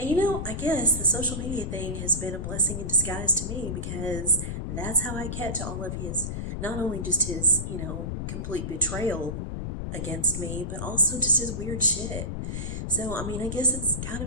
I guess the social media thing has been a blessing in disguise to me, because that's how I catch all of his, not only just his, complete betrayal against me, but also just his weird shit. So, I guess it's kind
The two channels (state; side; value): noise; left; rumble, 3 dB below the sound